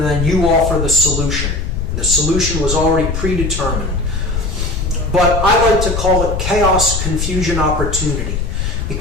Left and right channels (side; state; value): left; noise; rumble, 2 dB below the sound